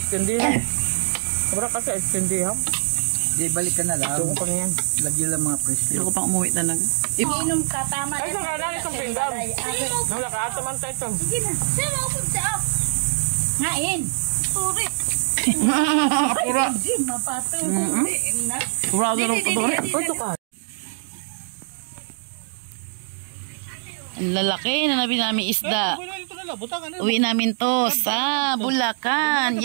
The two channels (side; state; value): left; silent; digital silence